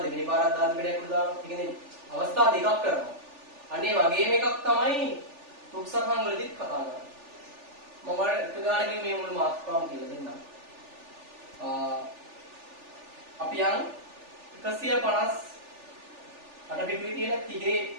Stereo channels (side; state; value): left; late; 3.4 ms